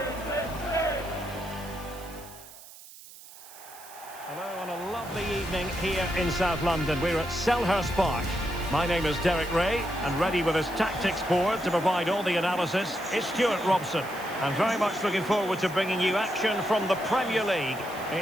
Hello and a lovely evening here in South London. We're at Selhurst Park. My name is Derek Ray, and ready with his tactics board to provide all the analysis is Stuart Robson. I'm very much looking forward to bringing you action from the Premier League.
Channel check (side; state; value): right; noise; hiss, 18 dB below the sound